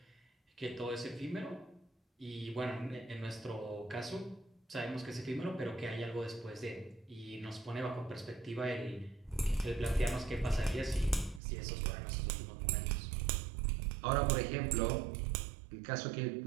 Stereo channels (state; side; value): drops out; left; at 11.4 s